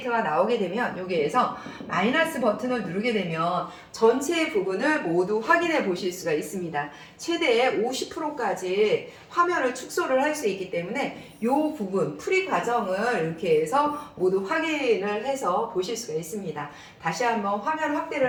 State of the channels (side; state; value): both; identical; correlation 1.00